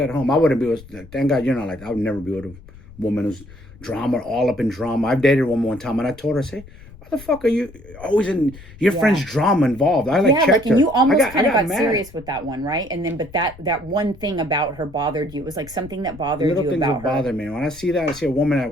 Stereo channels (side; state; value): left; noise; rumble, 20 dB below the sound